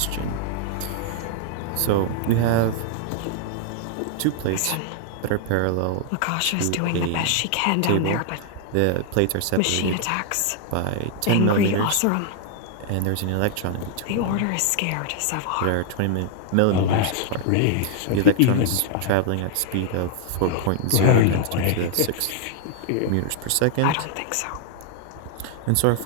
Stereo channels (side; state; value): both; different; correlation 0.00